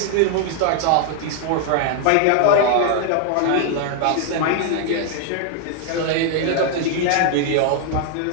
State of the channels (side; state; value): both; different; correlation 0.00